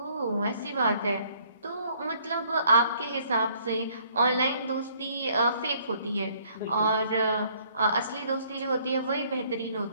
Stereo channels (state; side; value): inverted; both; correlation -0.62